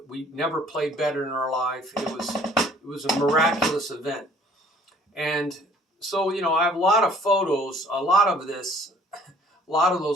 We never played better in our life. It was a miraculous event. And so, you know, I have a lot of photos. A lot of those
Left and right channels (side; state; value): both; normal; correlation 0.56